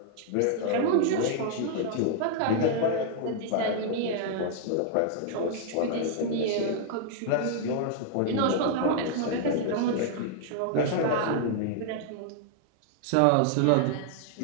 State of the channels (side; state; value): both; different; correlation -0.01